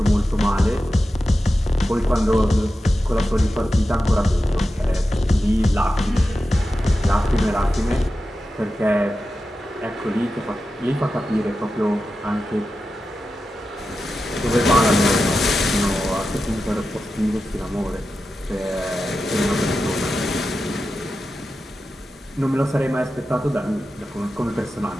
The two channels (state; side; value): normal; both; correlation 0.92